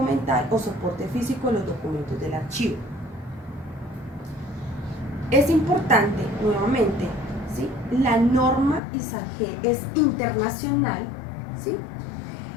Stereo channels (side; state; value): right; drops out; at 8.8 s